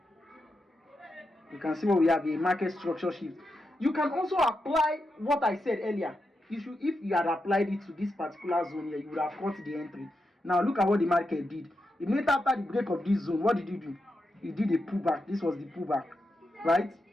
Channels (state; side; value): normal; both; correlation 0.86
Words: You can see what we have here, market structure shift. You can also apply what I said earlier. If you had applied it to this particular zone here, you would have caught the entry. Now look at what the market did. Immediately after the break of this zone, what did it do? It did a pullback. This was the pullback, right?